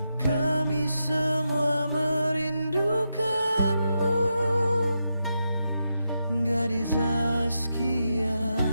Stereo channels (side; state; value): both; inverted; correlation -0.85